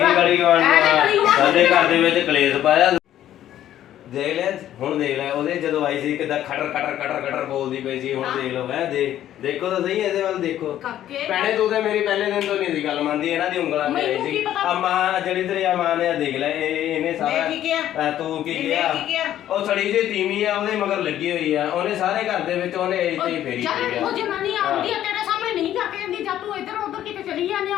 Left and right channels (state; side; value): quieter; right; 11.9 dB